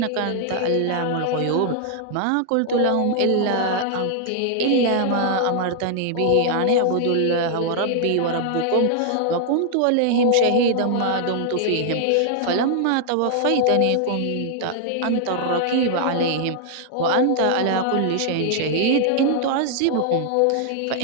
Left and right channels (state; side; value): different; both; correlation 0.00